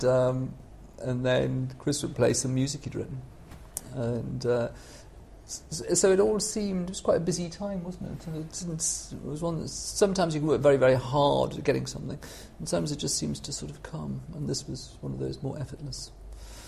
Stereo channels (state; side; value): identical; both; correlation 1.00